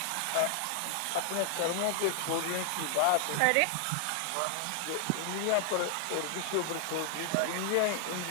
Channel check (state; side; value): different; both; correlation 0.00